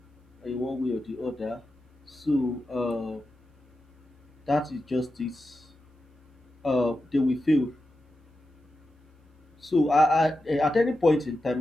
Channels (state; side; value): normal; both; correlation 0.90